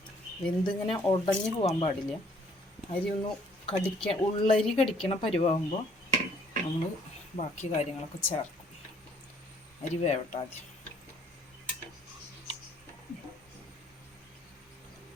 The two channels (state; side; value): normal; both; correlation 0.61